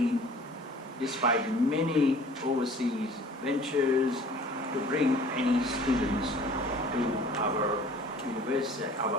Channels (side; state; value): both; normal; correlation 0.49